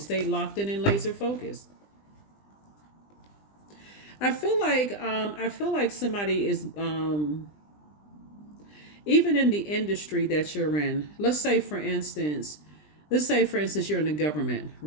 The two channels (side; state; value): right; late; 20 ms